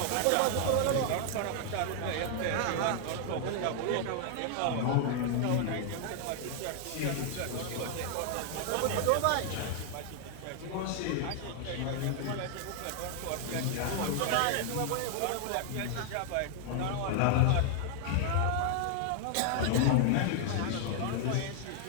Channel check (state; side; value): different; both; correlation 0.00